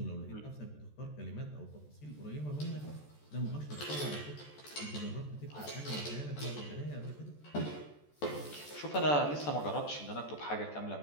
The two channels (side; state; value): right; late; 14 ms